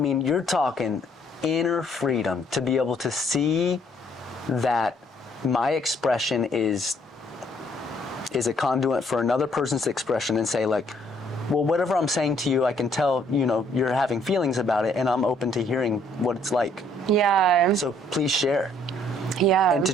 you're talking inner freedom to be able to see that my expression is a conduit for another person's expression, and say, like, well, whatever I'm saying to you, I can tell, you're having feelings about it, and I'm open to hearing what it's like. Yeah. So please share. Yeah. And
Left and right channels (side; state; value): both; normal; correlation 0.65